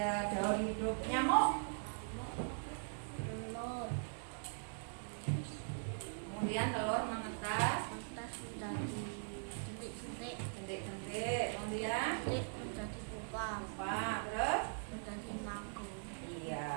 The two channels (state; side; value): silent; left; digital silence